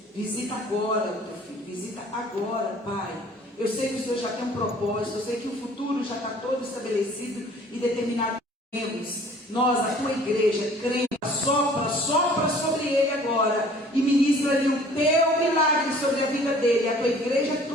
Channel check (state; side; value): normal; both; correlation 0.52